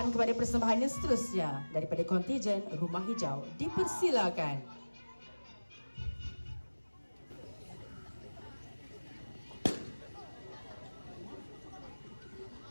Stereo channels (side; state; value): both; inverted; correlation -1.00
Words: kepada persembahan yang seterusnya daripada kontijen Rumah Hijau. Dipersilakan.